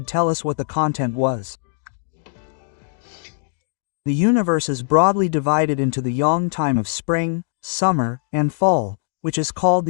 tell us what the content was. The universe is broadly divided into the yang time of spring, summer, and fall, which is called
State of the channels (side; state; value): right; silent; digital silence